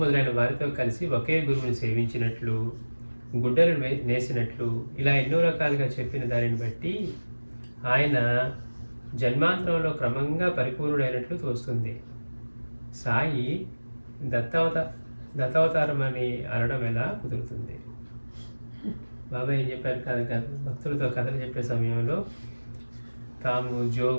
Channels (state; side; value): inverted; both; correlation -1.00